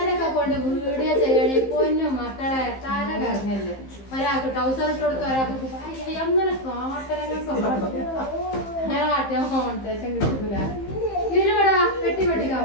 കൊണ്ട് വീഡിയോ ചെയ്യണേ പൊന്നും മക്കളെ തല കറങ്ങല്ലേ. ഒരാൾക്ക് ട്രൗസർ ഇട്ട് കൊടുത്ത ഒരാൾക്ക് അങ്ങനെ കാട്ടാൻ കോൺട്രേഷൻ കിട്ടൂല. ഇതിലൂടെ പെട്ടി പൊട്ടിക്കാൻ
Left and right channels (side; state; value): right; late; 15 ms